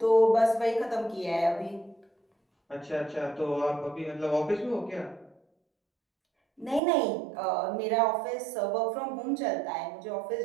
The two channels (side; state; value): left; drops out; at 6.8 s